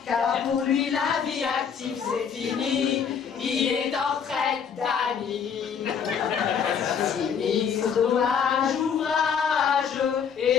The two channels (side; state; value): right; quieter; 7.1 dB